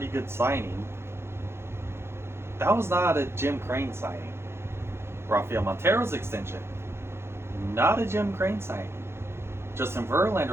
good signing. That was not a Jim Crane signing. Rafael Montero's extension, not a Jim Crane signing. Justin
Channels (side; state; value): left; late; 0.12 ms